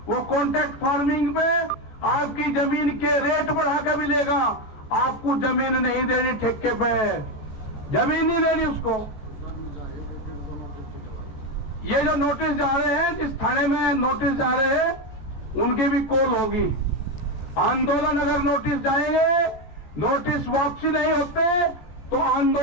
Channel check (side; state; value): right; late; 14 ms